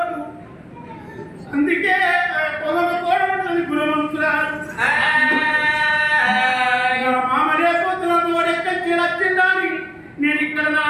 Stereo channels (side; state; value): both; identical; correlation 1.00